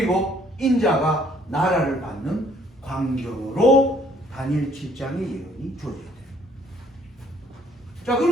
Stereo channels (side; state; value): both; normal; correlation 0.62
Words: 인자가 나라를 받는 광경으로 다니엘 7장의 예언이 주어져요. 자,